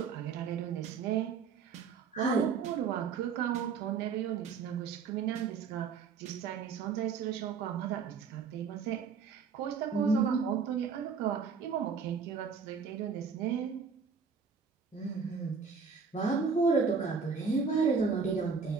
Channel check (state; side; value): quieter; left; 5.6 dB